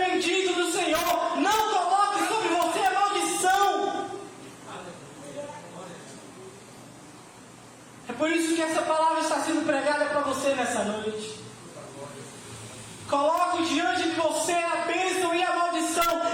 bendito do Senhor. Não coloque sobre você a maldição. É por isso que essa palavra está sendo pregada para você nessa noite. Coloque diante de você a bênção e a maldição.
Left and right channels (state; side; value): identical; both; correlation 1.00